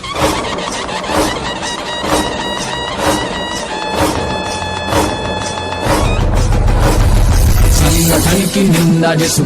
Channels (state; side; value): identical; both; correlation 1.00